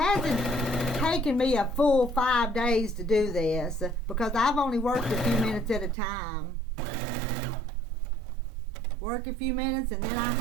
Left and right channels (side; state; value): left; drops out; at 6.0 s